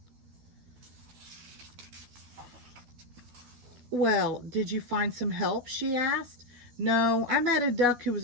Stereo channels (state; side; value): late; left; 12 ms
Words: "Well, did you find some help?" she asked. "No, I met a duck who was